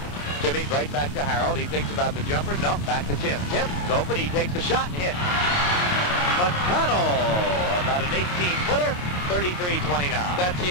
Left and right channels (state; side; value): late; right; 28 ms